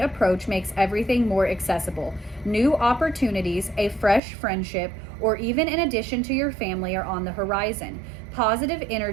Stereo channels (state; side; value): drops out; left; at 4.2 s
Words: makes everything more accessible. New opportunities, a fresh friendship, or even an addition to your family are on the horizon. Positive